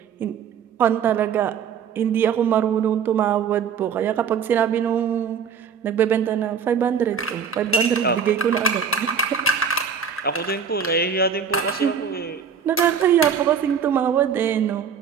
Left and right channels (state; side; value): quieter; left; 7.0 dB